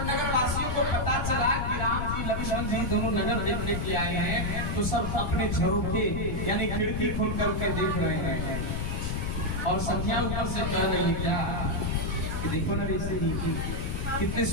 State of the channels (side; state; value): left; noise; rumble, 1 dB below the sound